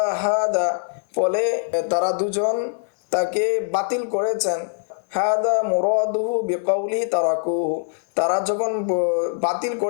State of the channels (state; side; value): silent; right; 64 dB below the other